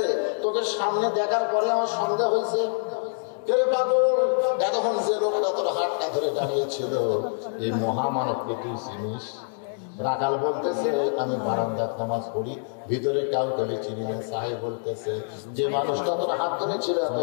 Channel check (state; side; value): silent; right; digital silence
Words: তোকে সামনে দেখার পরে আমার সন্দেহ হয়েছে। এতক্ষণ যে লোকটা তোর হাতটা ধরে দাঁড়িয়েছিল, এই মহামানবকে তুই চিনিস? রাখাল বলতেছে আমি বারান্দার নামাজ পড়ি, ভিতরে কাউকে আমি চিনি না। সাহেব বলতেছে যে মানুষটা তোর হাত ধরেছিল